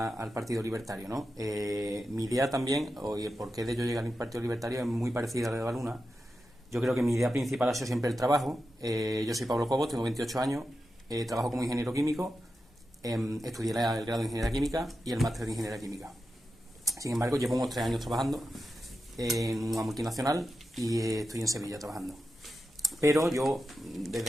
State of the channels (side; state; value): both; normal; correlation 0.90